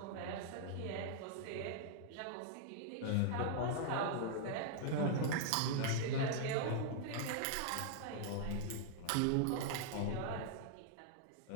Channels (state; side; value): different; both; correlation -0.01